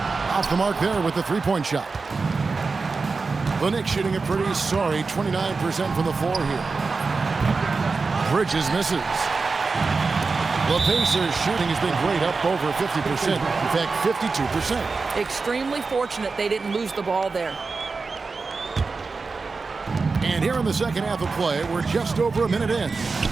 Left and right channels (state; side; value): quieter; left; 4.3 dB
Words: Off the mark there with the three-point shot. The Knicks shooting a pretty sorry 29% from the floor here. Bridges misses. The Pacers shooting has been great, up over 50%. In fact, 52%. Extremely fortunate they didn't lose the ball there. And here in the second half of play, we're just over a minute in.